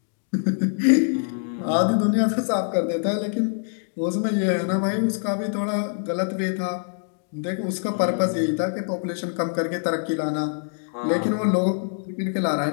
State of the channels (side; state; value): right; silent; 62 dB below the other